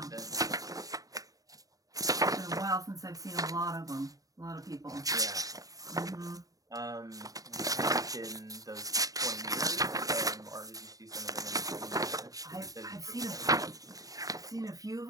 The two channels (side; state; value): left; late; 0.17 ms